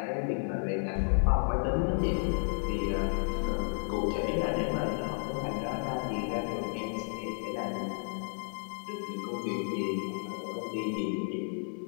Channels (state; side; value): silent; right; digital silence